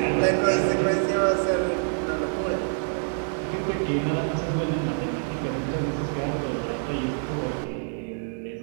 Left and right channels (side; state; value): left; silent; 61 dB below the other